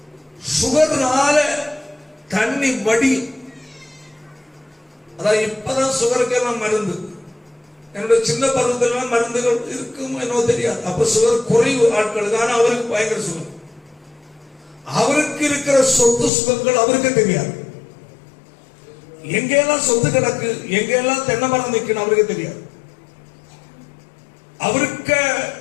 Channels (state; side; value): drops out; right; at 16.3 s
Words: சுகர்னால தண்ணி வடி, அதாவது இப்பதான் சுகருக்கு எல்லாம் மருந்து. என்னுடைய சின்ன பருவத்தில் மருந்துகள் இருக்கும் என்னவோ தெரியாது. அப்ப சுகர் குறைவு ஆட்களுக்கு, ஆனா அவருக்கு பயங்கர சுகர். அவருக்கு இருக்கிற சொத்து சுகங்கள் அவருக்கு தெரியாது. எங்கெல்லாம் சொத்து கிடக்கு, எங்கெல்லாம் தென்னை மரம் நிற்கணும் அவருக்கு தெரியாது. அவருக்கு